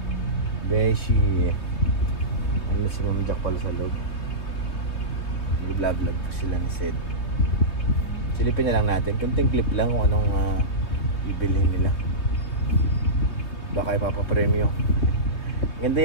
Beshi. Ano si Ma'am Jack pala sa loob. Vlog ko sila ni Sed. Silipin na lang natin. Kunting clip lang kung anong ibilhin nila. Baka ipapapremyo. Ganda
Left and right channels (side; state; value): right; late; 3.2 ms